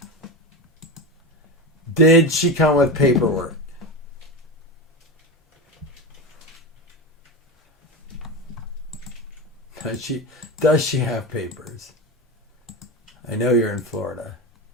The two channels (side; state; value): both; normal; correlation 0.21